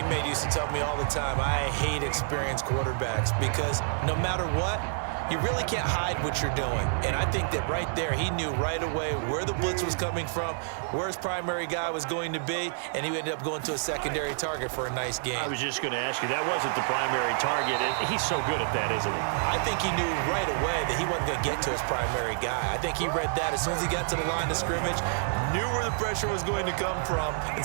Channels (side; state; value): left; silent; 59 dB below the other